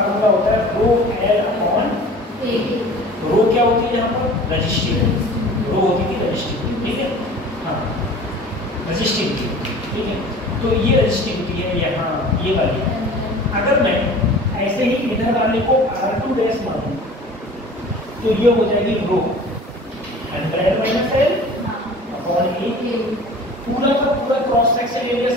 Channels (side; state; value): both; normal; correlation 0.43